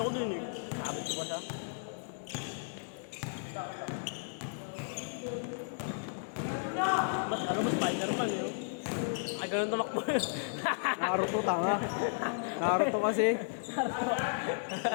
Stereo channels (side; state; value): right; silent; digital silence